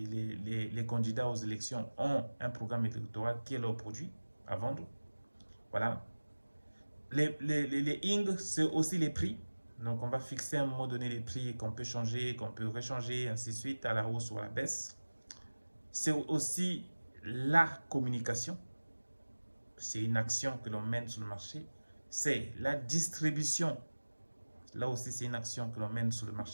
candidats aux élections ont un programme électoral qui est leur produit à vendre. Voilà. Les ing, c'est aussi les prix. Donc, on va fixer à un moment donné les prix qu'on peut changer, qu'on peut rechanger, ainsi de suite, à la hausse ou à la baisse. C'est aussi la communication. C'est une action que l'on mène sur le marché. C'est la distribution. Là aussi, c'est une action que l'on mène sur le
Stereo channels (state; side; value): inverted; both; correlation -1.00